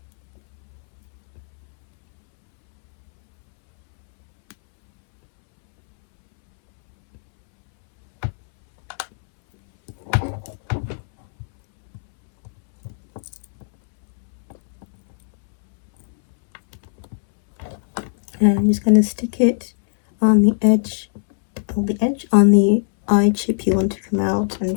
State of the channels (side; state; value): right; silent; 66 dB below the other